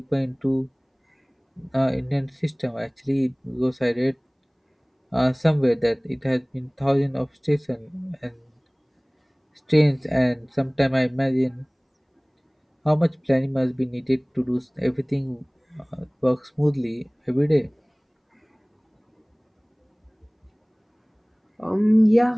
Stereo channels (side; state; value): both; identical; correlation 1.00